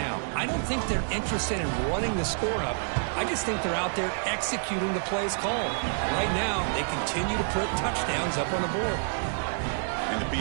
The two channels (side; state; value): left; silent; digital silence